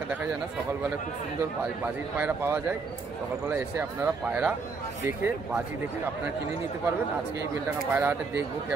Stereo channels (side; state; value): left; quieter; 4.4 dB